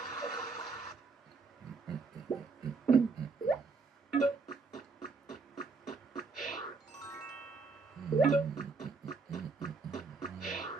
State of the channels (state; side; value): quieter; left; 4.4 dB